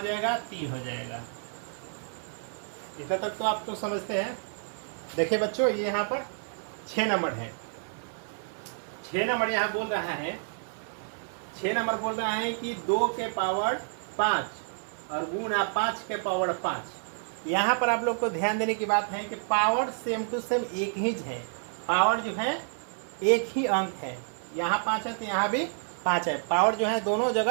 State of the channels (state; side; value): silent; left; 58 dB below the other